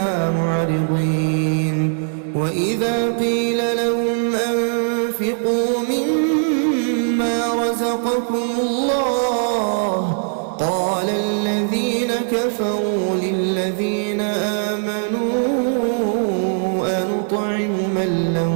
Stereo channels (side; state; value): left; silent; digital silence